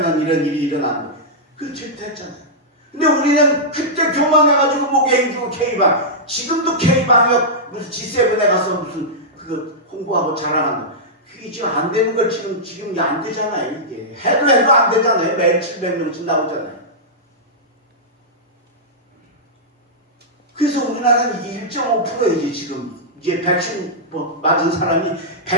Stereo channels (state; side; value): normal; both; correlation -0.11